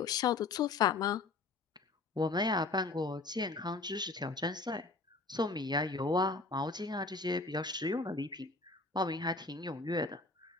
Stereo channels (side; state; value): right; quieter; 3.6 dB